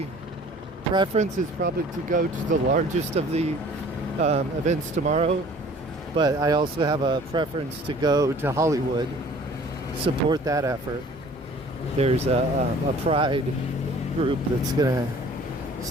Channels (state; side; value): normal; both; correlation 0.50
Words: preference is probably to go to the largest of the events tomorrow, but I also have a preference to go to Hollywood, support that effort. There's a pride group that's gonna